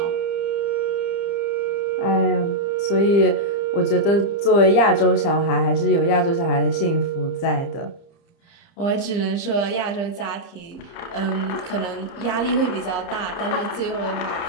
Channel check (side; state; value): right; late; 30 ms